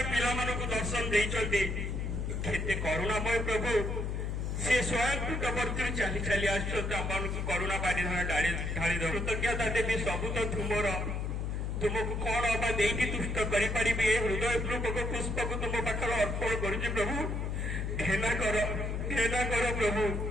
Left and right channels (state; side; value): noise; left; hum, 2 dB below the sound